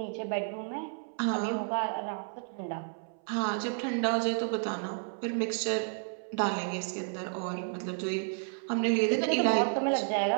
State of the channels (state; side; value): silent; left; 57 dB below the other